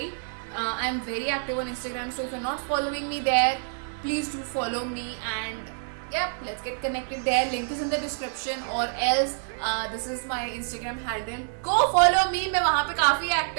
I'm very active on Instagram, so if you're not following me there, please do follow me, and yeah, let's get connected there. Link is in the description, or else this is my Instagram handle. Go follow me. मैं वहाँ पे काफी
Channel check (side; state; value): left; silent; digital silence